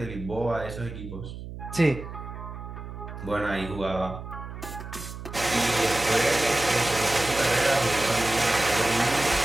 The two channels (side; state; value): right; noise; hum, 11 dB below the sound